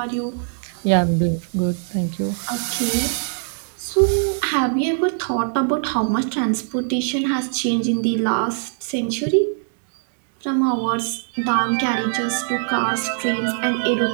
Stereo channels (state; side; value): silent; left; 64 dB below the other